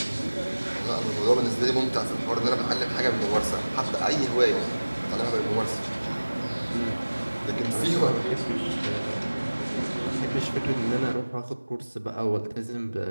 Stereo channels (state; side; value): inverted; both; correlation -1.00